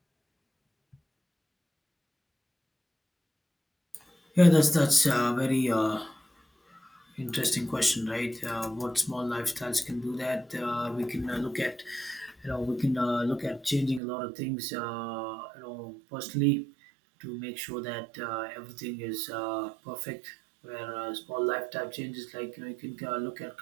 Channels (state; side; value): drops out; left; at 14.0 s